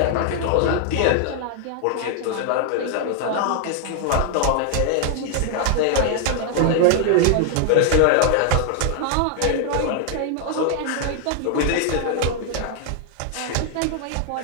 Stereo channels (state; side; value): different; both; correlation 0.00